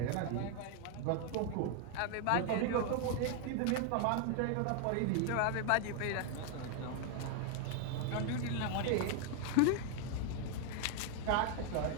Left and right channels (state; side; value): different; both; correlation 0.00